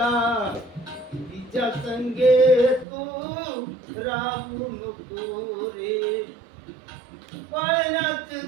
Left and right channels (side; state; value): left; drops out; at 2.9 s